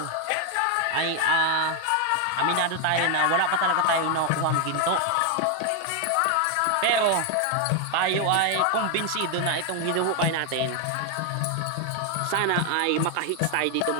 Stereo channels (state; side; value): different; both; correlation 0.00